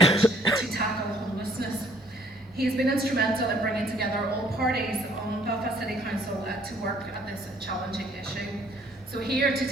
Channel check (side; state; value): both; normal; correlation 0.61